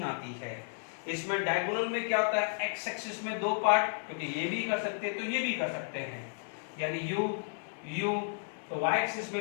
आती है। इसमें डायगोनल में क्या होता है? एक्स एक्सिस में 2 पार्ट, क्योंकि ये भी कर सकते हैं तो ये भी कर सकते हैं, यानी यू तो वाई एक्सिस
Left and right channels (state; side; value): silent; right; digital silence